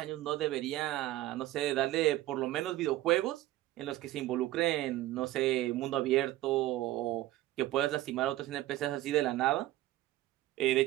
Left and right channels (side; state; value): left; quieter; 15.9 dB